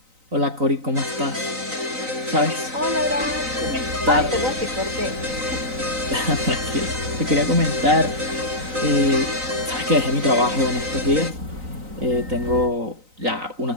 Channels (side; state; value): left; late; 3.9 ms